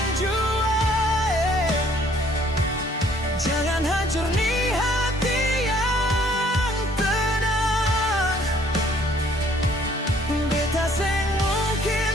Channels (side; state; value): both; normal; correlation 0.60